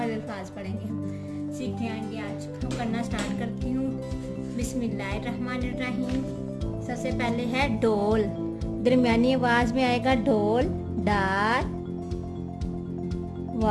अल्फाज पढ़ेंगे। हम सीखते आएंगे। आज हम करना स्टार्ट करती हूँ। बिस्मिल्लाहिर्रहमानिर्रहीम। सबसे पहले है डोल। दरमियानी आवाज़ में आएगा डोल, डाल,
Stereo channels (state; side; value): identical; both; correlation 1.00